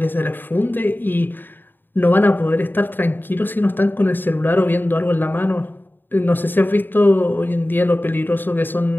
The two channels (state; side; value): late; right; 0.093 ms